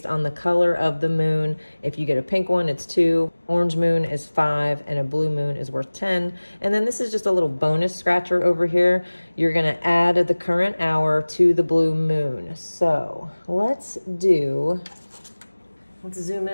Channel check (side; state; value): both; inverted; correlation -1.00